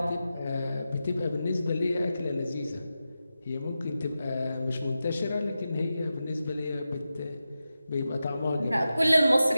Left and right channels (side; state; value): both; inverted; correlation -0.92